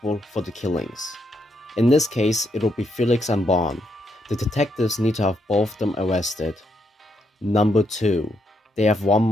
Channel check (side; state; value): both; normal; correlation 0.78